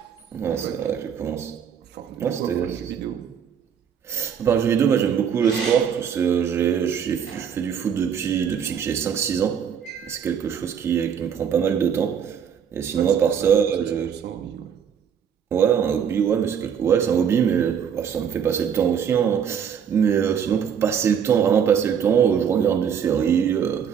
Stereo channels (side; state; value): left; quieter; 7.8 dB